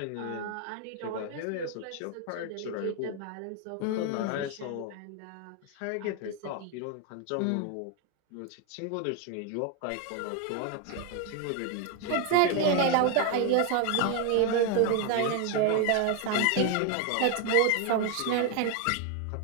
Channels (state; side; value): different; both; correlation 0.01